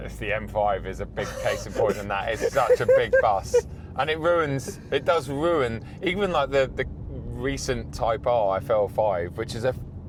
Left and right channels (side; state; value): both; identical; correlation 1.00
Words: M5 is a big case in point in that. It's such a big bus. And it does ruin, even like the recent Type R FL5, which is a